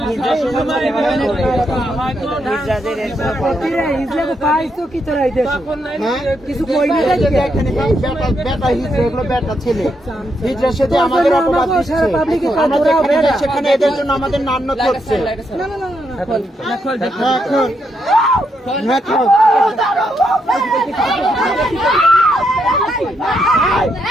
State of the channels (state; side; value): normal; both; correlation 0.79